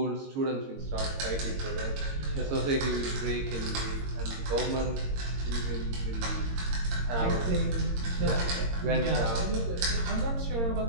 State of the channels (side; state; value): left; late; 22 ms